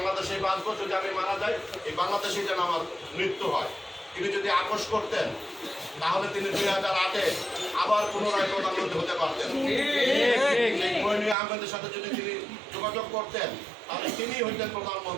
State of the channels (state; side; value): drops out; left; at 11.4 s